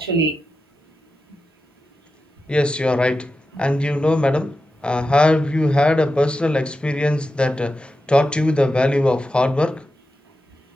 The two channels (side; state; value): both; normal; correlation 0.91